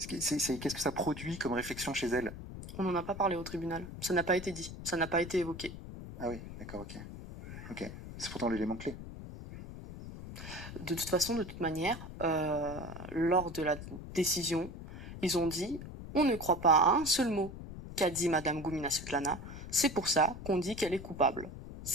qu'est-ce que ça produit comme réflexion chez elle? On n'en a pas parlé au tribunal. Ça n'a pas été dit. Ça n'a pas été évoqué. Ah oui, d'accord, ok. Ok. C'est pourtant l'élément clé. De toute façon, de toute manière, lors de la décision, ils ont dit « On ne croit pas à un seul mot qu'a dit Madame Goumina Svetlana. C'est pour ça qu'on dit qu'elle est coupable. »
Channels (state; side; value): noise; left; rumble, 11 dB below the sound